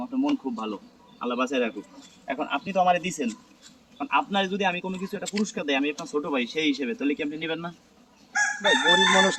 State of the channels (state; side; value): identical; both; correlation 1.00